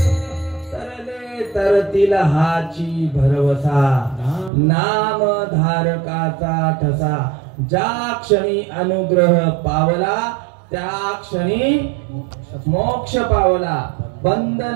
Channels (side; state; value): left; drops out; at 4.5 s